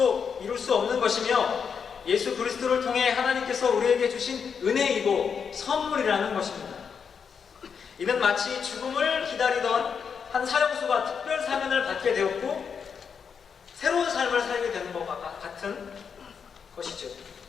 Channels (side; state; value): right; quieter; 6.6 dB